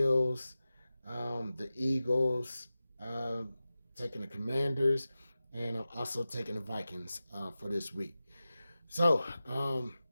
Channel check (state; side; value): inverted; both; correlation -0.94